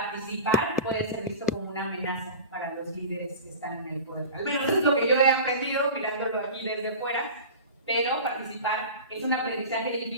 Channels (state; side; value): inverted; both; correlation -0.34